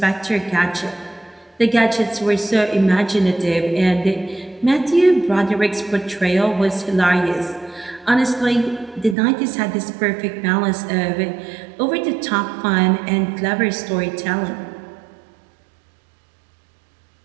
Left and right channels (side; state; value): left; drops out; at 9.2 s